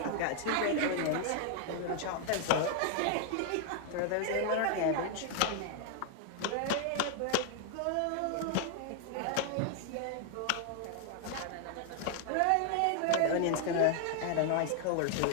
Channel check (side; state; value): both; different; correlation 0.00